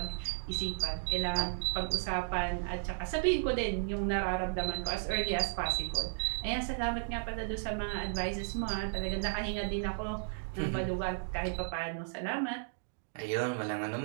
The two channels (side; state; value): left; silent; digital silence